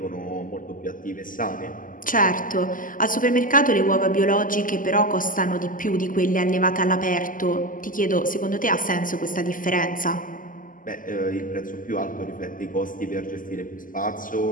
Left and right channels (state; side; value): late; right; 0.39 ms